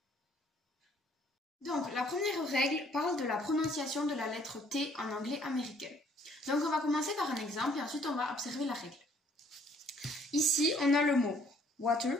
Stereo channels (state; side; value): normal; both; correlation 0.61